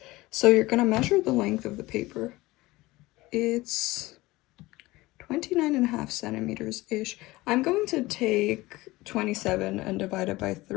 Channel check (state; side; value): quieter; right; 19.8 dB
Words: So you're going to measure the length of the paper. It's 29.5 centimeters-ish. I'm going to take 27 and divide it by